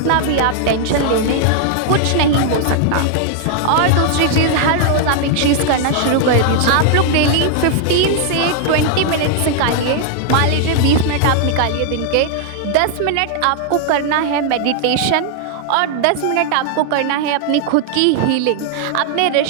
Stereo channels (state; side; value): different; both; correlation 0.00